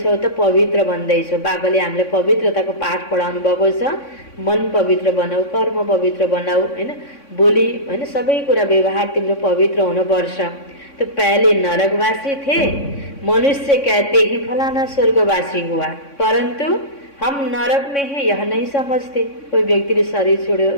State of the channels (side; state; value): right; late; 3.6 ms